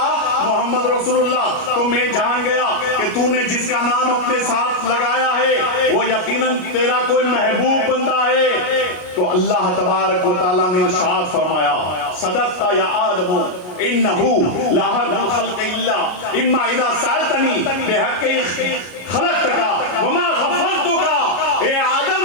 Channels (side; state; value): right; late; 33 ms